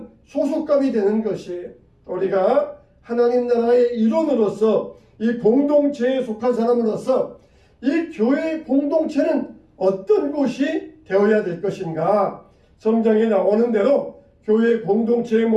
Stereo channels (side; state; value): both; identical; correlation 1.00